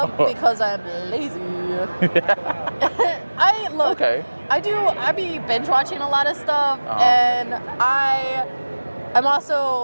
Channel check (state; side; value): inverted; both; correlation -1.00